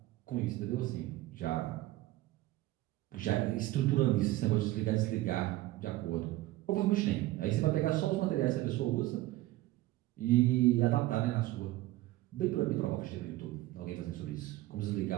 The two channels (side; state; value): left; quieter; 17.1 dB